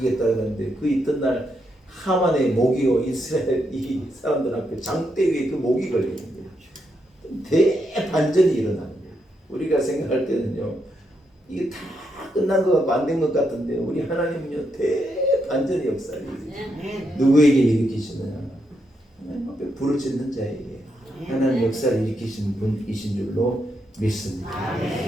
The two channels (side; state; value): both; normal; correlation 0.81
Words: 그랬는데 그 있던 하만의 모기요 이스라엘 이 사람들 앞에 장대 위에 그 모기 걸리는 거예요. 대반전이 일어나는 거예요. 우리가 생각할 때는요 이게 다 끝난 것 같고 안 된 것 같은데 우리 하나님은요 대반전의 역사를 누구에게 일으키시느냐 하나님 앞에 부르짖는 자에게 하나님 역사를 일으키신 분이신 줄로 믿습니다.